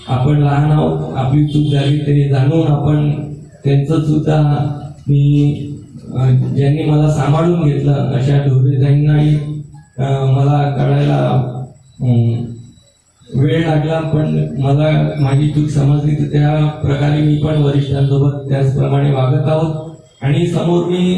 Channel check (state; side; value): identical; both; correlation 1.00